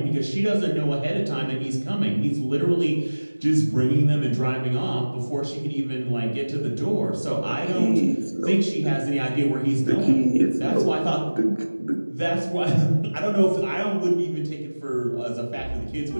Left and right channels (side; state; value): both; inverted; correlation -1.00